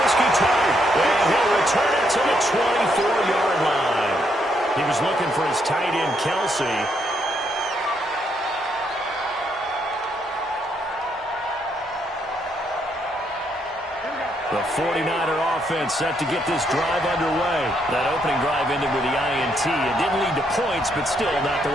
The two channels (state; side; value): normal; both; correlation 0.75